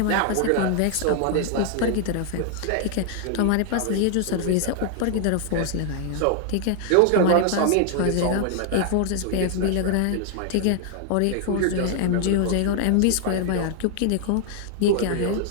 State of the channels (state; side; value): different; both; correlation 0.00